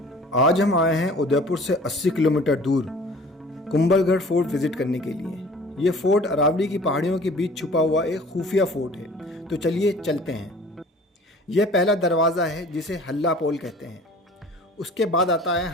आज हम आए हैं उदयपुर से 80 किलोमीटर दूर कुंभलगढ़ फोर्ट विजिट करने के लिए। ये फोर्ट अरावली की पहाड़ियों के बीच छुपा हुआ एक खुफिया फोर्ट है। तो चलिए चलते हैं। यह पहला दरवाज़ा है जिसे हल्ला पोल कहते हैं। उसके बाद आता है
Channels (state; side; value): normal; both; correlation 0.47